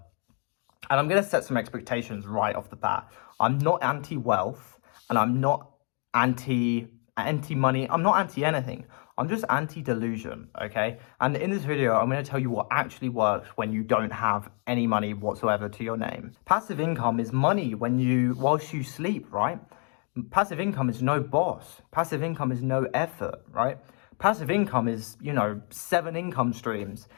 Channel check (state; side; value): quieter; right; 39.4 dB